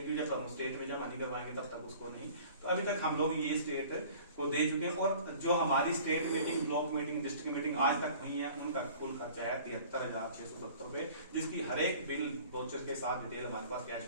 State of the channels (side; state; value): both; inverted; correlation -0.47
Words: जब हम स्टेट में जमा नहीं करवाएंगे तब तक उसको नहीं। तो अभी तक हम लोग ये स्टेट को दे चुके हैं। और जो हमारी state meeting, block meeting, district meeting आज तक हुई है, उनका कुल खर्चा है 73,670 रुपए, जिसकी हर एक बिल वाउचर के साथ डिटेल हमारे पास कैश